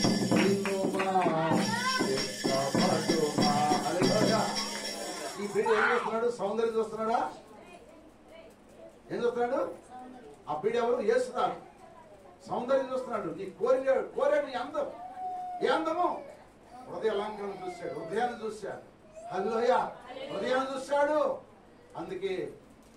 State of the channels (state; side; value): identical; both; correlation 1.00